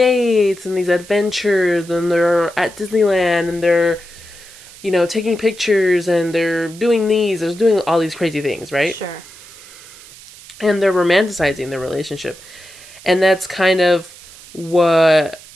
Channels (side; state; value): right; noise; hiss, 20 dB below the sound